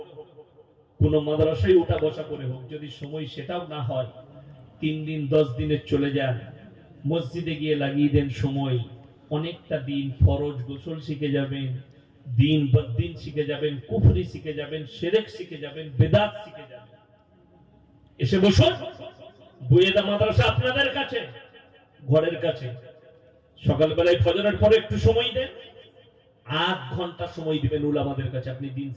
কোন মাদ্রাসায় উঠা বসা করে হোক। যদি সময় সেটাও না হয়, 3 দিন 10 দিনের চলে যান, মসজিদে গিয়ে লাগিয়ে দেন সময়। অনেকটা দিন ফরজ গোসল শিখে যাবেন, দিন বদ্দিন শিখে যাবেন, কুফরি শিখে যাবেন, শিরক শিখে যাবেন, বেদাত শিখে যাবেন। এসে বসুন, বুয়েদা মাদ্রাসা আপনাদের কাছে, ঘরের কাছে। সকালবেলায় ফজরের পরে একটু সময় দেন, 8 ঘন্টা সময় দিবেন উলামাদের কাছে, আপনি দিন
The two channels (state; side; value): identical; both; correlation 1.00